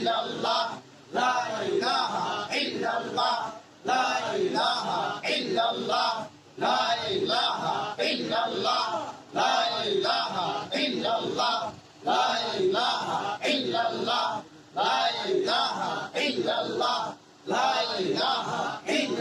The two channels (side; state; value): both; identical; correlation 1.00